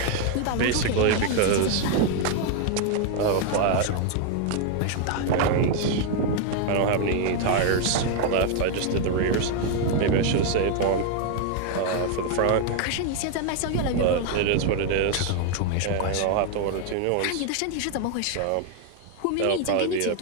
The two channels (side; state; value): both; different; correlation 0.00